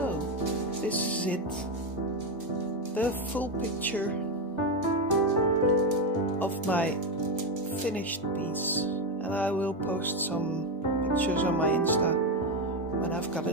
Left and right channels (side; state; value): both; normal; correlation 0.10